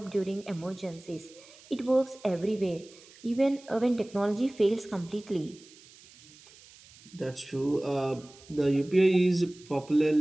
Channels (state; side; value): noise; right; hiss, 23 dB below the sound